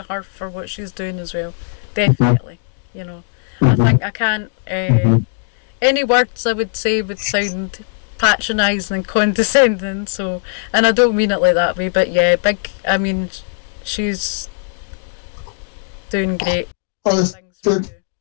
her for what she's doing as well. Definitely, I think I can't. Any words I would say would sound patronising and condescending. So, and I don't mean it like that way, but yeah, big. I mean, she's doing great. Well, the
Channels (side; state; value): right; silent; 63 dB below the other